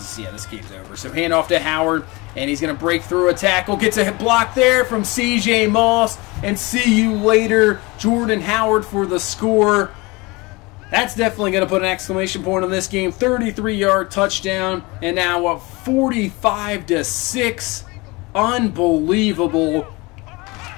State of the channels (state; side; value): quieter; right; 24.5 dB